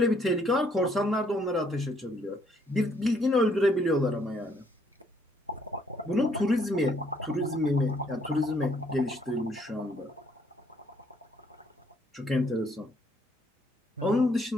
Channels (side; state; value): both; normal; correlation 0.67